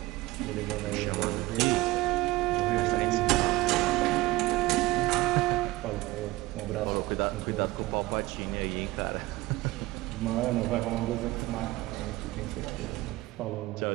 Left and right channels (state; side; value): quieter; left; 19.2 dB